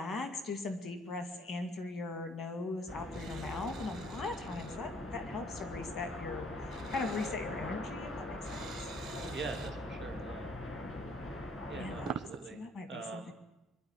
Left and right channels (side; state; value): both; normal; correlation 0.61